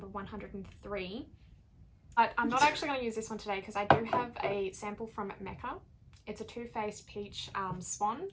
103. But I'm not actually going to use this one today because I do have a sample from MECCA. It's a Too-Faced Peach Swan.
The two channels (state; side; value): identical; both; correlation 1.00